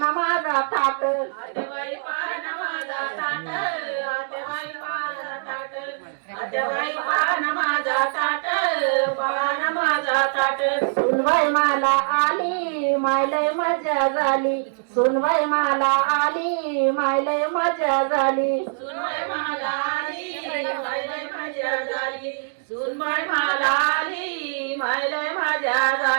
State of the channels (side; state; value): left; silent; digital silence